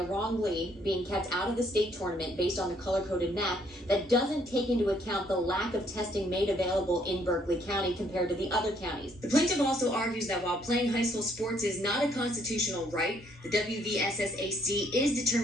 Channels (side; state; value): both; normal; correlation 0.67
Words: wrongly being kept out of the state tournament based on the color-coded map that doesn't take into account the lack of testing made available in Berkeley County compared to the other counties. The plaintiff also argues that while playing high school sports is not a constitutional right, the WVSSAC is